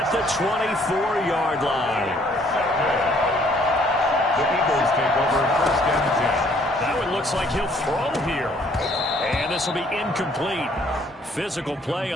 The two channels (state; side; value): normal; both; correlation 0.62